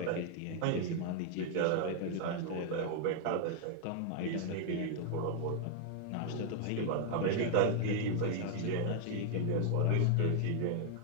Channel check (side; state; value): both; different; correlation 0.00